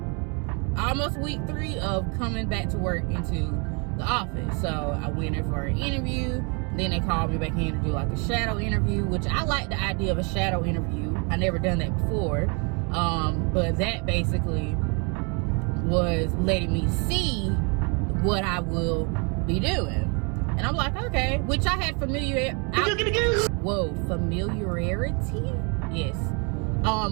almost week 3 of coming back to work into the office. So I went in for an interview. Then they called me back in to do like a shadow interview, which I like the idea of a shadow interview. I never done that before. But that basically was letting me see what I will be doing. And I'm like, okay, which I had familiarity. Yes.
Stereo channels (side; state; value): left; quieter; 33.8 dB